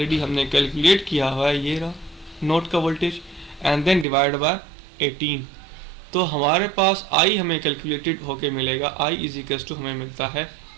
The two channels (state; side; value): drops out; left; at 4.0 s